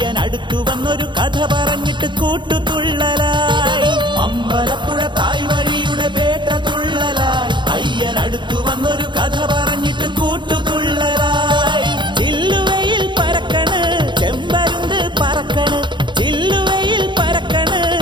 വന്നൊരു കഥ പറഞ്ഞിട്ട് കൂട്ടുതുള്ളലായി. അമ്പലപ്പുഴ തായ് വഴിയുടെ പേട്ടതുള്ളലായി അയ്യനടുത്തു വന്നൊരു കഥ പറഞ്ഞിട്ട് കൂട്ടുതുള്ളലായി. ചില്ലുവയിൽ പരക്കണ് ചെമ്പരുന്ത് പറക്കണ്, ചില്ലുവയിൽ പരക്കണ്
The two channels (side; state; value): left; late; 0.23 ms